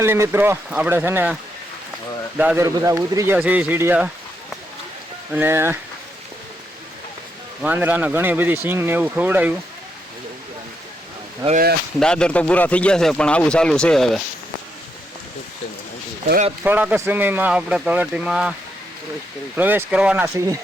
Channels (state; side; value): normal; both; correlation 0.79